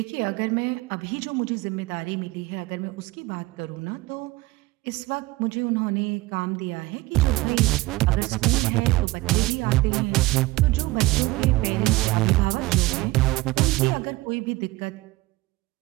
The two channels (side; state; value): left; quieter; 20.2 dB